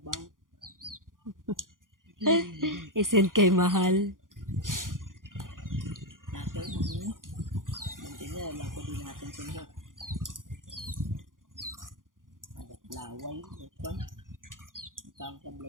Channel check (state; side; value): late; left; 0.89 ms